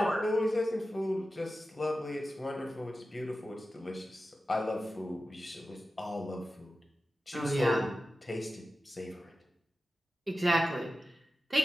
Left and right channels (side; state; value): both; normal; correlation 0.94